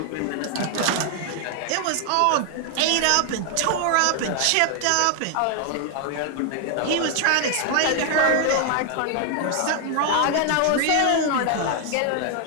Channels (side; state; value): both; different; correlation 0.00